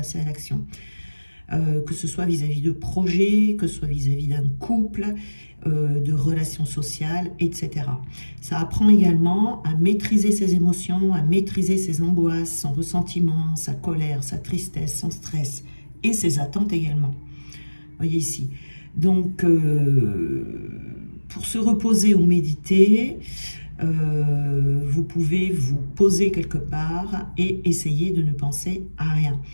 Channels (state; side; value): inverted; both; correlation -1.00